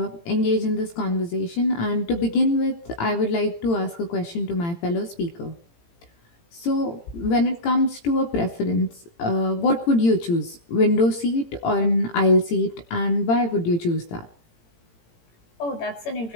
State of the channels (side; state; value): right; late; 18 ms